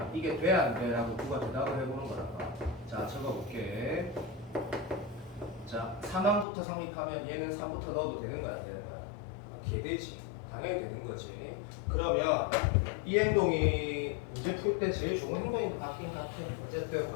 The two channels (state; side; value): drops out; right; at 6.5 s